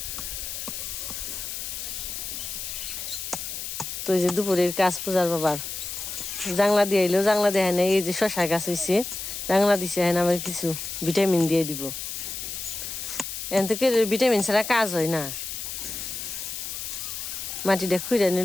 তো এই যে দুপুরের কাজ পূজার বাবার জাংলা দিয়ে এলো, জাংলা দেয় না। এই যে শশা গাছ হয়েছে, জাংলা দিছে, হ্যাঁ আমার কিছু ভিটামিন দিয়ে দিব। এন থেকে ভিটামিন ছাড়া কাজ হয় না। মাটিটা খুঁড়ে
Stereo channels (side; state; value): left; noise; hiss, 6 dB below the sound